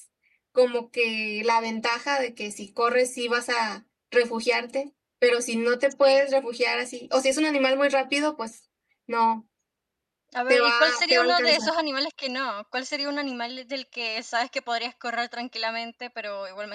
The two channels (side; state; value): both; identical; correlation 1.00